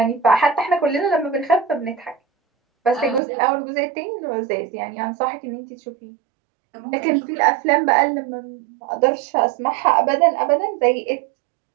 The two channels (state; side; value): drops out; left; at 3.2 s